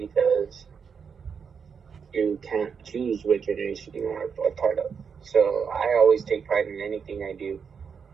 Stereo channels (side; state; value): left; quieter; 6.4 dB